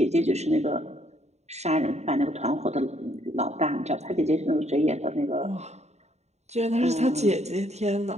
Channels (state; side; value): late; left; 0.32 ms